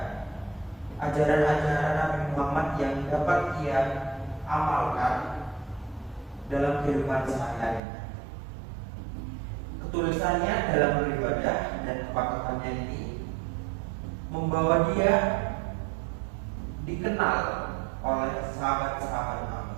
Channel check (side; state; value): left; drops out; at 7.8 s